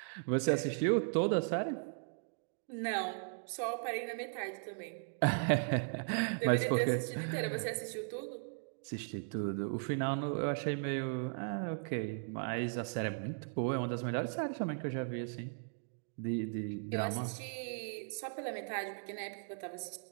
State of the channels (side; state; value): left; silent; digital silence